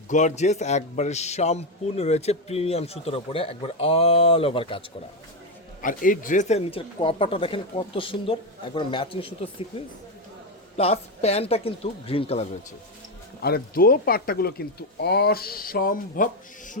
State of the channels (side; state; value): both; normal; correlation 0.08